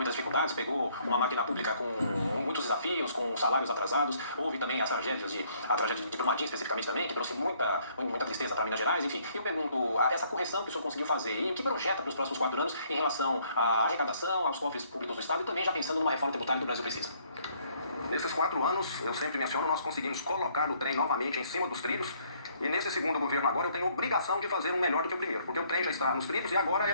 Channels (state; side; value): inverted; both; correlation -0.65